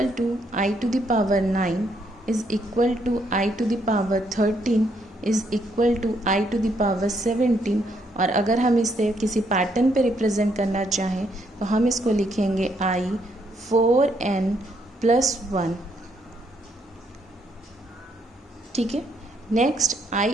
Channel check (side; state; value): both; normal; correlation 0.73